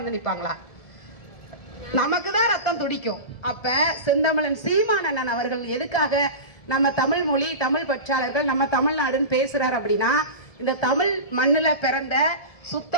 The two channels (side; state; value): right; late; 1.7 ms